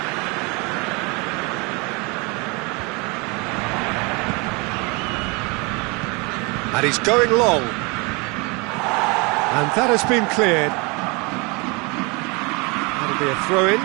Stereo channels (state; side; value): quieter; left; 28.7 dB